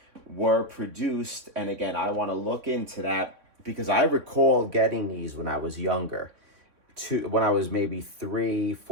were produced. And again, I want to look into that because I recall getting these when I was younger, when I was maybe 3,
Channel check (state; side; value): late; left; 3.6 ms